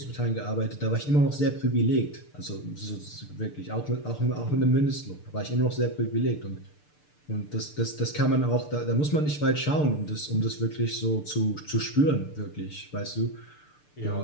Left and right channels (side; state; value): right; late; 6.7 ms